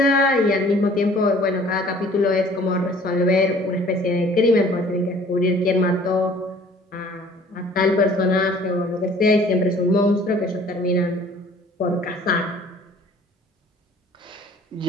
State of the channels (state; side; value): normal; both; correlation 0.53